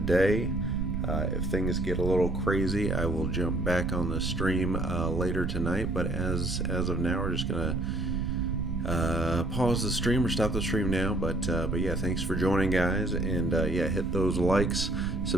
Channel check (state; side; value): noise; right; rumble, 3 dB below the sound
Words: If things get a little crazy, I will jump back on the stream later tonight. But as of now, we're just gonna pause the stream or stop the stream now. But yeah, thanks for joining, guys, and yeah, hit those likes,